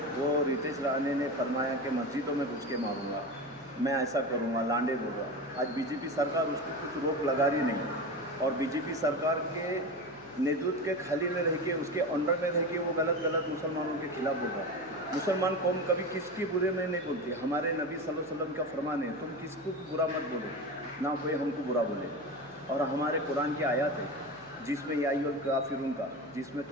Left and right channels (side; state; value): left; noise; hum, 24 dB below the sound